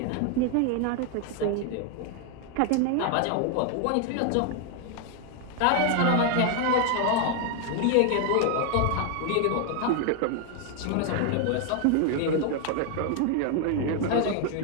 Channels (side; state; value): both; different; correlation 0.00